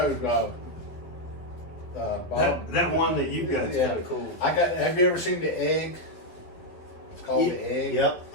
Bob. That one that you've got is Yeah. kind of cool. Have you ever seen the egg? It's called the egg. Yep,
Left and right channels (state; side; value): late; right; 12 ms